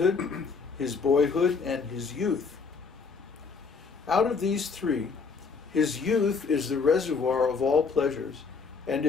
his boyhood, and his youth. Out of these three, his youth is the reservoir of all pleasures, and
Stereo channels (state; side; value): quieter; right; 5.0 dB